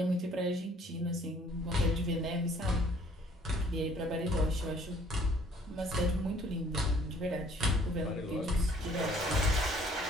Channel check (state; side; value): normal; both; correlation 0.58